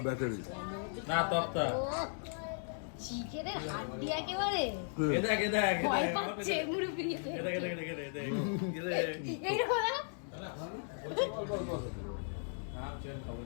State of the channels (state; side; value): silent; right; digital silence